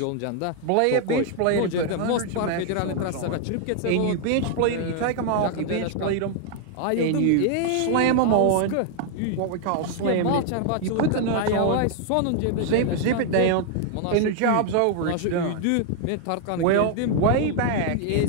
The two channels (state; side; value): different; both; correlation 0.00